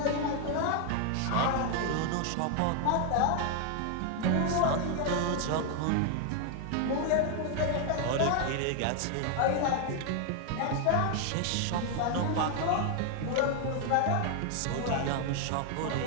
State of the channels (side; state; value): both; different; correlation 0.00